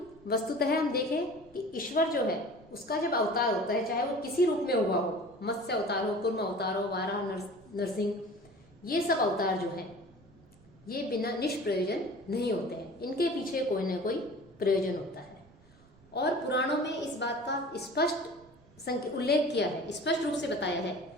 वस्तुतः हम देखें कि ईश्वर जो है उसका जब अवतार होता है, चाहे वो किसी रूप में हुआ हो, मत्स्य अवतार हो, कूर्म अवतार हो, वाराह, नरसिंह, ये सब अवतार जो हैं ये बिना निष्प्रयोजन नहीं होते हैं, इनके पीछे कोई ना कोई प्रयोजन होता है। और पुराणों में इस बात का स्पष्ट उल्लेख किया है, स्पष्ट रूप से बताया है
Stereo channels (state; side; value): noise; right; rumble, 27 dB below the sound